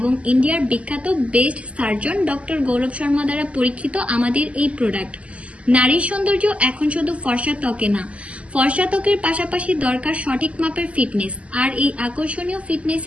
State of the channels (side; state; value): left; late; 0.063 ms